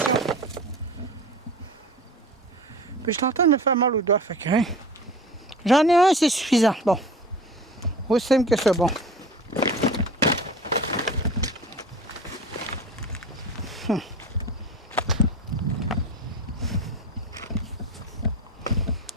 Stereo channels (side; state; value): both; normal; correlation 0.36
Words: Puis je t'entends me faire mal au doigt, fait que hein. J'en ai un, c'est suffisant. Bon. Aussi simple que c'est bon.